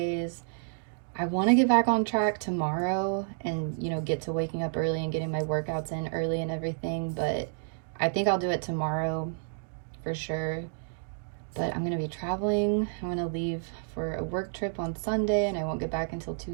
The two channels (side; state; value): left; silent; digital silence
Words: I want to get back on track tomorrow and, you know, get to waking up early and getting my workouts in early and everything. But I think I'll do it tomorrow for sure. But I'm going to be traveling. I'm going to leave for a work trip on Sunday and I won't get back until